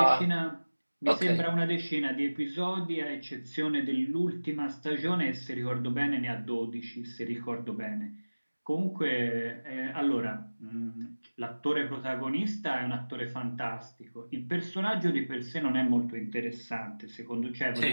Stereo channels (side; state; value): both; inverted; correlation -1.00